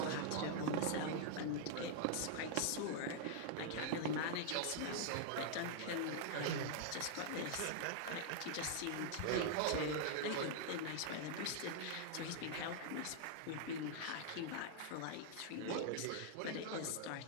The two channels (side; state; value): both; different; correlation -0.01